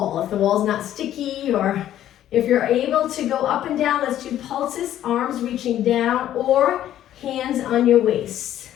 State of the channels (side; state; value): right; quieter; 11.9 dB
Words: not sticky, or if you're able to go up and down, let's do pulses, arms reaching down or hands on your waist.